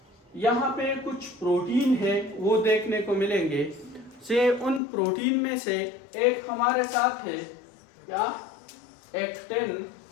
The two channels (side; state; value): right; drops out; at 4.8 s